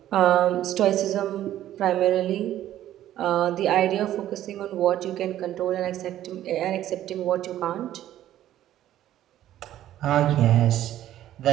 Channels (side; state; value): left; quieter; 12.6 dB